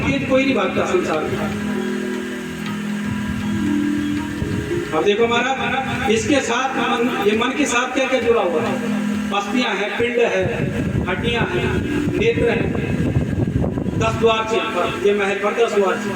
कोई नहीं भागता संसार में। अब देखो महाराज, इसके साथ मन, ये मन के साथ क्या क्या जुड़ा हुआ है? अस्थियां हैं, पिंड है, हड्डियां हैं, नेत्र है, 10 द्वार से, ये महल पर 10 द्वार से,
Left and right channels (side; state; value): both; identical; correlation 1.00